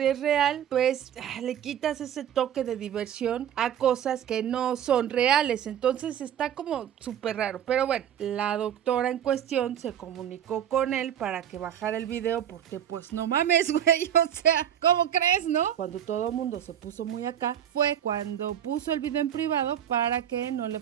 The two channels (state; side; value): quieter; left; 9.9 dB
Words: es real, pues le quitas ese toque de diversión a cosas que no son reales. Entonces está como súper raro. Pero bueno, la doctora en cuestión se comunicó con él para que bajara el video porque pues no mames, güey, o sea, ¿cómo crees, no? Cuando todo el mundo se puso muy acá fue cuando puso el video en privado para que no le